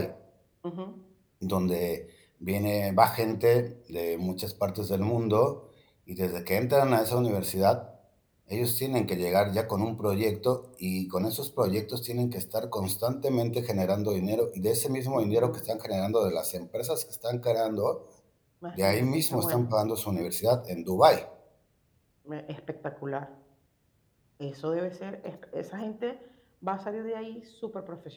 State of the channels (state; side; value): identical; both; correlation 1.00